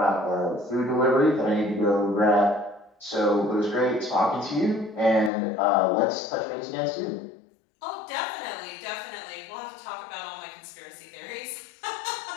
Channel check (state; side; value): drops out; right; at 5.3 s